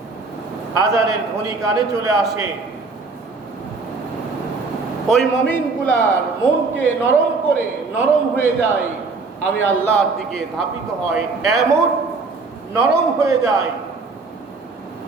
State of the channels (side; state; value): left; quieter; 4.1 dB